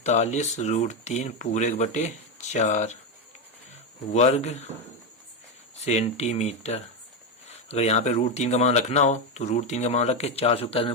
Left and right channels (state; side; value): normal; both; correlation 0.09